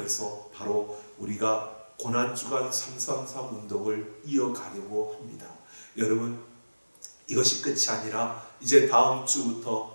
바로 우리가 고난주간 333 운동을 이어가려고 합니다. 여러분, 이것이 끝이 아니라 이제 다음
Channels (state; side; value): inverted; both; correlation -1.00